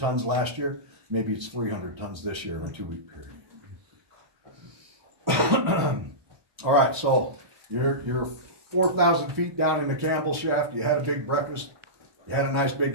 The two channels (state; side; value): late; left; 1.2 ms